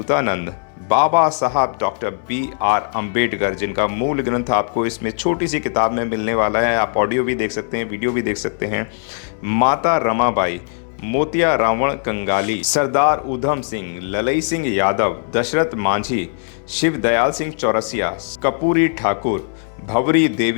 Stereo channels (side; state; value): right; silent; 66 dB below the other